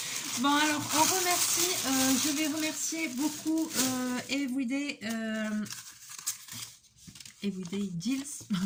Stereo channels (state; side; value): identical; both; correlation 1.00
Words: Bon, alors, on remercie, je vais remercier beaucoup Everyday Deals,